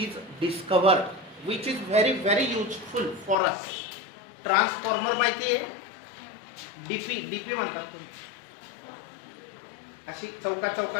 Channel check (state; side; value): drops out; right; at 3.4 s